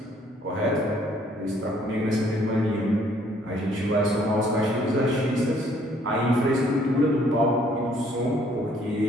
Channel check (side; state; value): both; normal; correlation 0.63